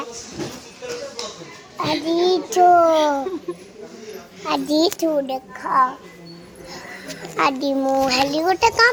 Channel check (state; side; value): identical; both; correlation 1.00